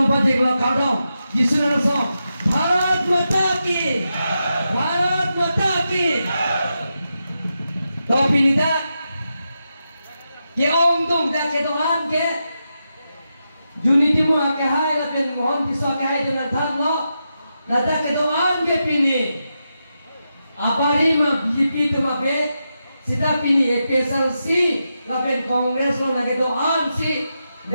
pajak lo kaldom. Jisunan song. Bharat Mata Ki. Bharat Mata Ki. To pinita. Ke om tum dah ke Tuhan ke. Dunia itu mau kahai lapen mohon pisau kahai dengan tham lo. Nada ke Tuhan ke pini. Apari ma BJP tu ma be. Sita pini SLC lapen Kongres lo nage Tuhan si.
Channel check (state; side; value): inverted; both; correlation -0.87